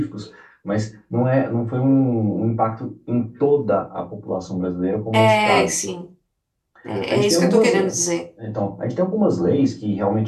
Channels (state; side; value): identical; both; correlation 1.00